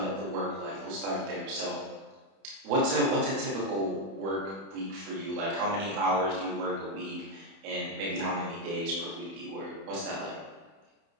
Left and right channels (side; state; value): left; late; 31 ms